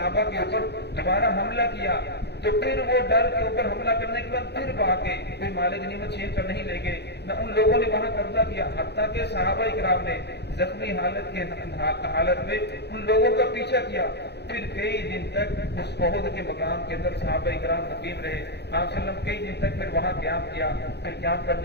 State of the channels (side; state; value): right; late; 0.49 ms